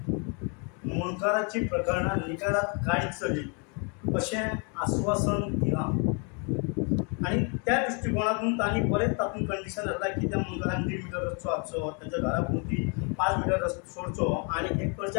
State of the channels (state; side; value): quieter; right; 36.3 dB